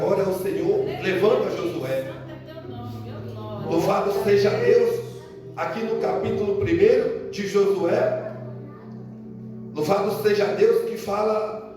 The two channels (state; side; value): identical; both; correlation 1.00